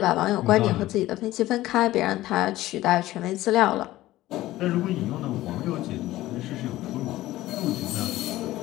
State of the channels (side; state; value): right; quieter; 16.1 dB